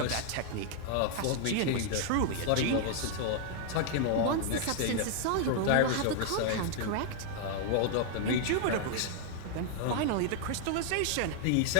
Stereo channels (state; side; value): different; both; correlation 0.00